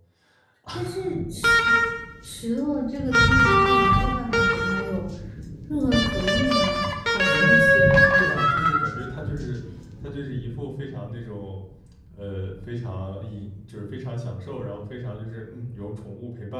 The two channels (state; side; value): identical; both; correlation 1.00